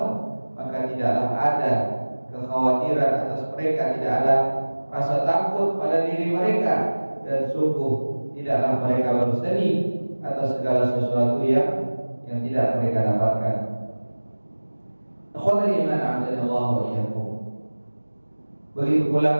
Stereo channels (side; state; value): both; inverted; correlation -1.00